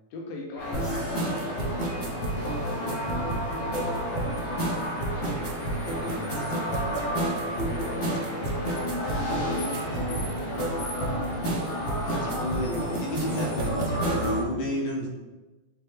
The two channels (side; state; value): right; late; 18 ms